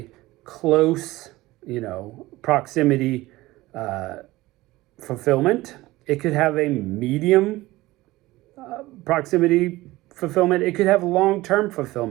close, proximity fulfillment. It could have a medium proximity fulfillment. It could have long-term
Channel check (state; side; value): quieter; left; 18.6 dB